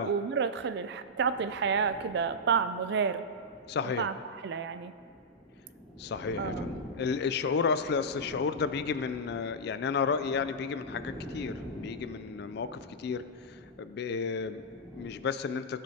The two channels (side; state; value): both; normal; correlation -0.09